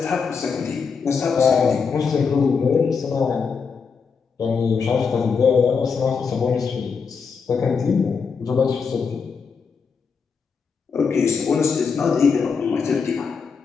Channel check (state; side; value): quieter; right; 5.6 dB